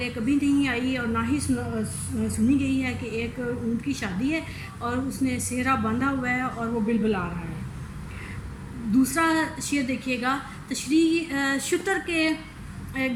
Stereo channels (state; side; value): identical; both; correlation 1.00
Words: کبھی نہیں آئی اور نہ ہی سنی گئی ہے کہ ایک اونٹ کی شادی ہے اور اس نے صحرا باندھا ہوا ہے اور وہ بلبلا رہا ہے۔ دوسرا شعر دیکھیے گا: تشریح شتر کے